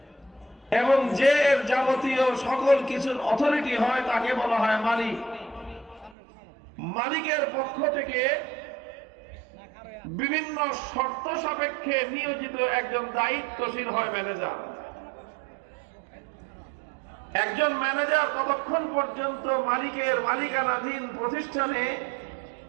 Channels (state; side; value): drops out; left; at 6.2 s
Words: এবং যে এর যাবতীয় সকল কিছুর অথরিটি হয় তাকে বলা হয় মালিক। মালিকের পক্ষ থেকে বিভিন্ন শর্ত সাপেক্ষে নিয়োজিত একজন দায়িত্বশীল হয় ম্যানেজার। একজন ম্যানেজার ততক্ষণ পর্যন্ত মালিকের মালিকানাধীন প্রতিষ্ঠানে